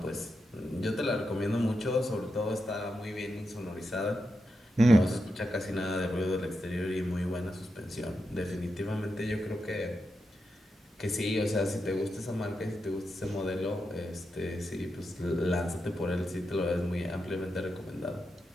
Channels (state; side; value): normal; both; correlation 0.87